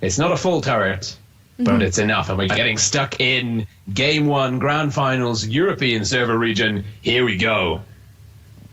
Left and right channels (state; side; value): identical; both; correlation 1.00